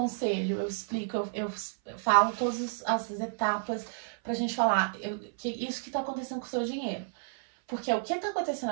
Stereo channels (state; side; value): silent; left; 56 dB below the other